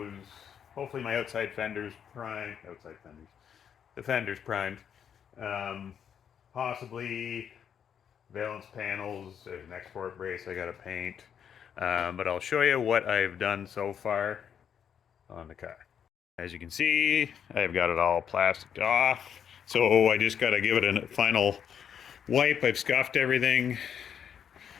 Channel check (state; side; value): quieter; right; 8.3 dB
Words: hopefully my the fenders primed. Um, Possibly valence panels, there's an export brace I got to paint. But I'll show you what I've done so far on the car. As you can see, I've got it all plasticed off. So I just got to give it a final wipe. I've scuffed everything.